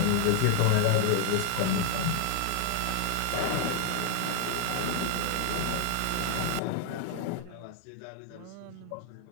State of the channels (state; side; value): different; both; correlation 0.00